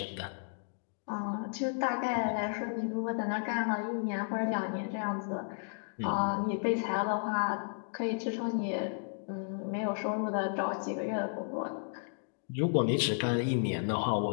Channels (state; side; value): silent; right; digital silence